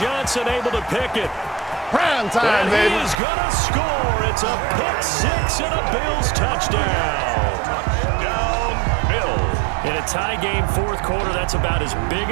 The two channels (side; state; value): left; drops out; at 3.2 s